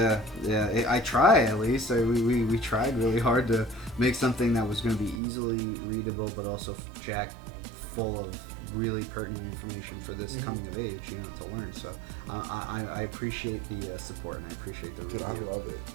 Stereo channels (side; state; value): left; drops out; at 5.2 s